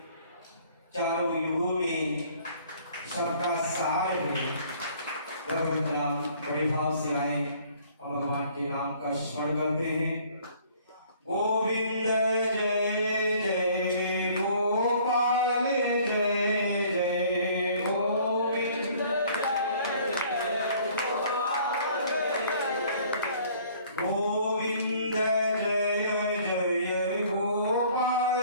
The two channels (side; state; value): both; inverted; correlation -0.56